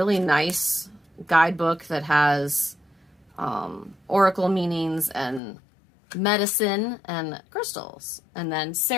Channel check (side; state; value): right; drops out; at 5.4 s